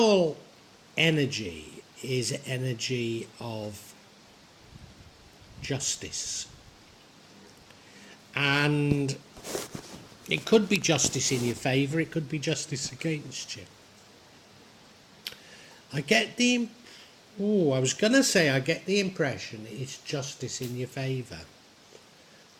energy is energy of justice. And it could be justice in your favour, it could be justice against you. I get the impression it's justice in your favour.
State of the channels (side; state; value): both; identical; correlation 1.00